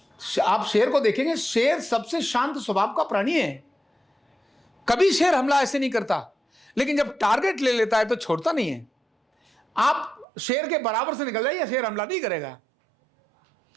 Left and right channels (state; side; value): drops out; left; at 10.2 s